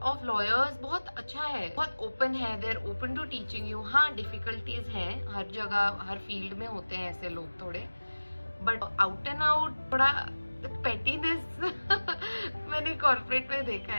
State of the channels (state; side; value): inverted; both; correlation -1.00